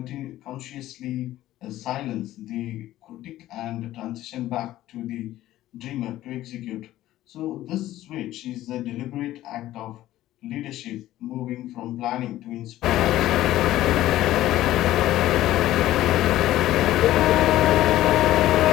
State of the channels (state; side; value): quieter; right; 14.6 dB